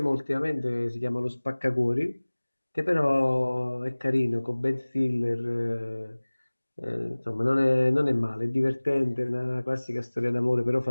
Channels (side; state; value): both; inverted; correlation -1.00